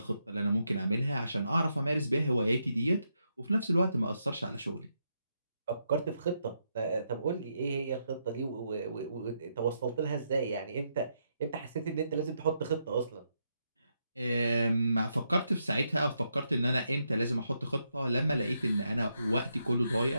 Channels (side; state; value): both; inverted; correlation -0.80